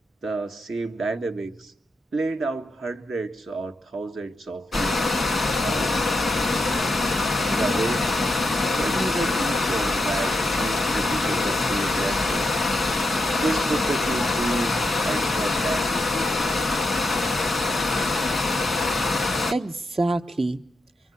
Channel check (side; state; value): both; normal; correlation 0.85